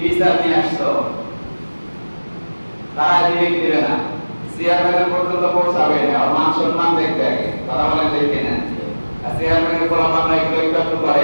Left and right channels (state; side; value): inverted; both; correlation -1.00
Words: বিচার নিয়ে আসছো, তারা দিবে কি দিবে না? চেয়ারম্যানের পর্যন্ত পৌঁছাবে না, আর মান সম্মান দেখবে আগে। কথা বলে দেখি না? চেয়ারম্যানের গোলাম নাই একটু করে,